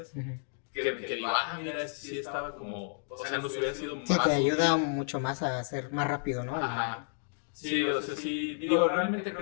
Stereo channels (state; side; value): silent; right; digital silence